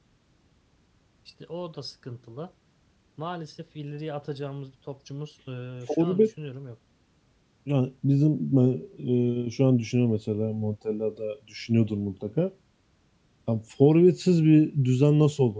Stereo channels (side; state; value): both; identical; correlation 1.00